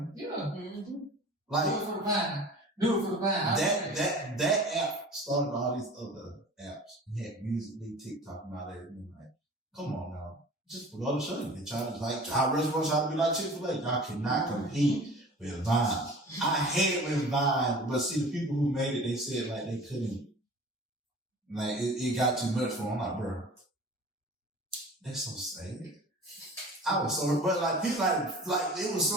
Yeah. Mm-hmm. Like, do it for the Vine. That app started all these other apps. You had Musical.ly, TikTok, and all that. And like, come on now. Just for the show you. They try to, like, our restaurants try to be like Chick-fil-A. Y'all cannot compete with Vine. I hate with Vine, but see, the people who made it, they said, like, they couldn't. Like, it got too much for them. I'm like, bro, that's so sad. I was so, but like, people like, it was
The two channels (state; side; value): normal; both; correlation 0.42